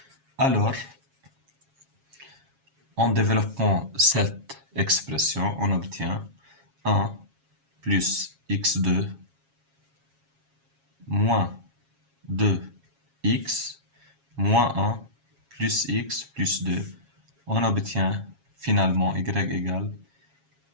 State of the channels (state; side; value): late; left; 7.3 ms